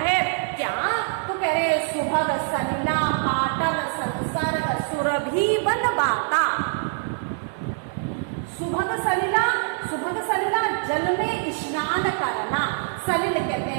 है क्या, तो कह रहे सुभग सलिला पाटल संसर्ग सुरभि बन बाता। सुभग सलिला, सुभग सलिला जल में स्नान करना, सलिल कहते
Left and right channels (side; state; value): left; silent; digital silence